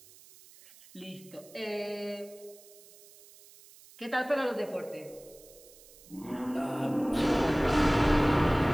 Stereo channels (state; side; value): noise; right; hiss, 23 dB below the sound